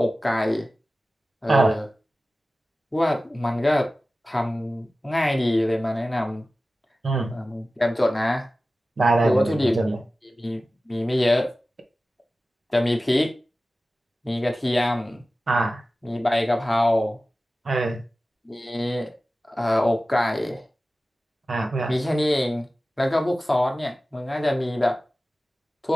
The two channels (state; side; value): normal; both; correlation 0.95